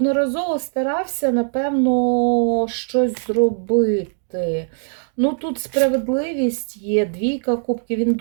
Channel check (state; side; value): silent; left; digital silence